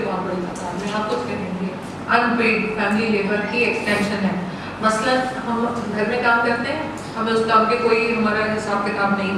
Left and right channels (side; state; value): both; identical; correlation 1.00